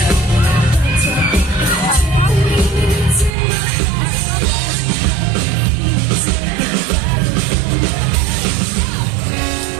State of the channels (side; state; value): left; drops out; at 3.4 s